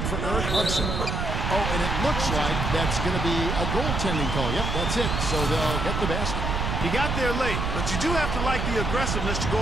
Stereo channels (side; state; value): right; noise; rumble, 1 dB below the sound